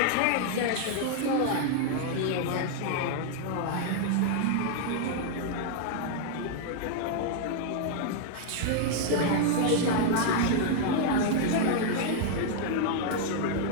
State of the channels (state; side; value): different; both; correlation 0.00